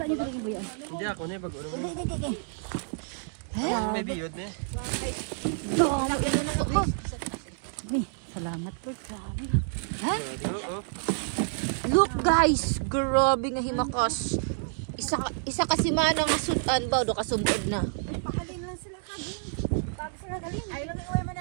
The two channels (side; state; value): left; silent; digital silence